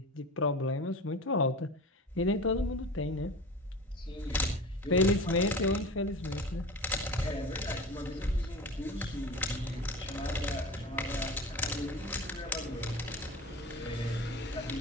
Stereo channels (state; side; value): normal; both; correlation 0.33